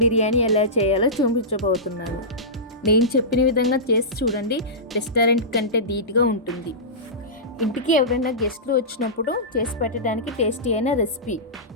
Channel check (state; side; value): normal; both; correlation -0.18